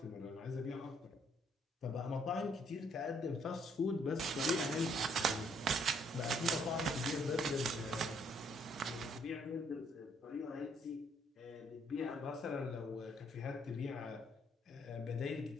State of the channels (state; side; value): normal; both; correlation 0.67